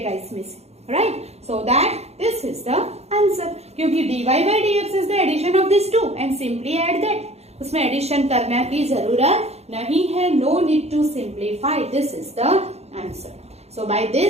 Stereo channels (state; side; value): late; left; 0.31 ms